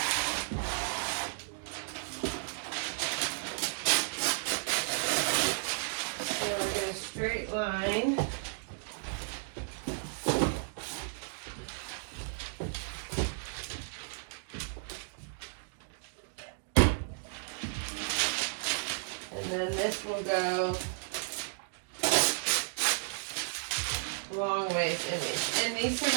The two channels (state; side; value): silent; left; digital silence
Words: So I get a straight line. And then this will go long ways in these. And these